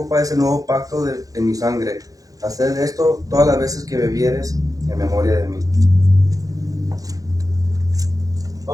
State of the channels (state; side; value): late; left; 0.17 ms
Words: es el nuevo pacto en mi sangre. Haced esto todas las veces que bebieres en memoria de mí.